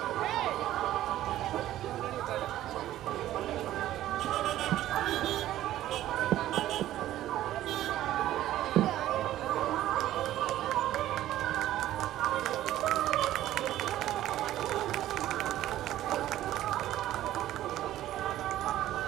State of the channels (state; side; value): quieter; left; 13.7 dB